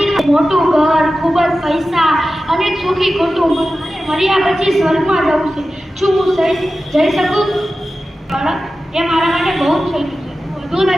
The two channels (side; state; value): both; normal; correlation 0.94